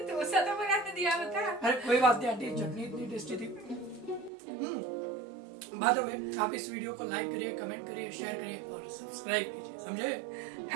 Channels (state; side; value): drops out; left; at 4.3 s